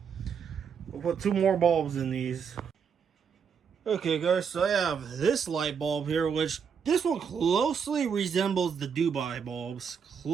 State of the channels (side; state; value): left; quieter; 6.7 dB